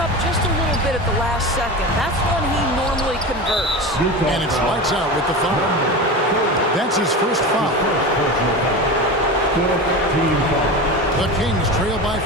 just a little bit at the last second. That's when he normally converts. And it's lights out with the foul. That's his first foul. The Kings trail by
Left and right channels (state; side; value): normal; both; correlation 0.27